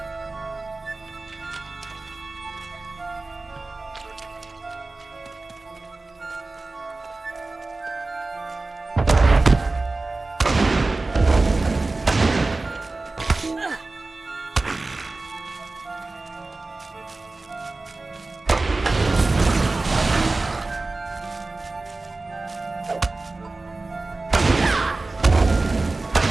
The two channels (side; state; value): left; quieter; 3.3 dB